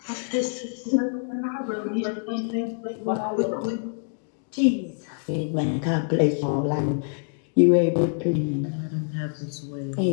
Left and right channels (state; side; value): silent; right; digital silence